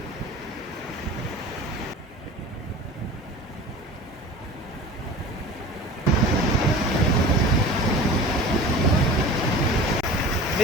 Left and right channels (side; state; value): both; normal; correlation 0.38